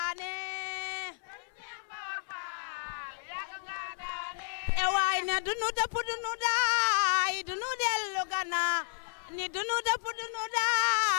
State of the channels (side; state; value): right; silent; 56 dB below the other